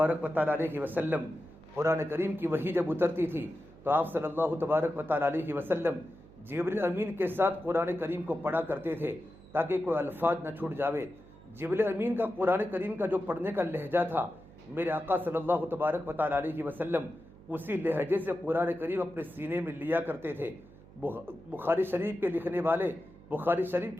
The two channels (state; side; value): noise; right; hum, 22 dB below the sound